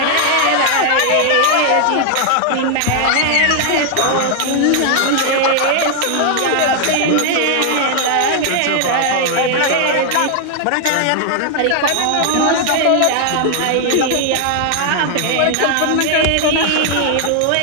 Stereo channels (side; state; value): both; different; correlation 0.00